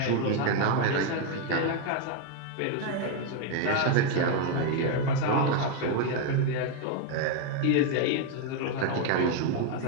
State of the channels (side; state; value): both; different; correlation 0.01